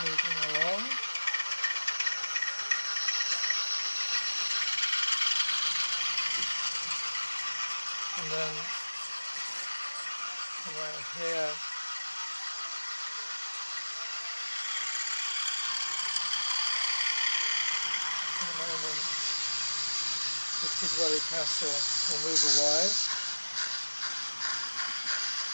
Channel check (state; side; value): inverted; both; correlation -1.00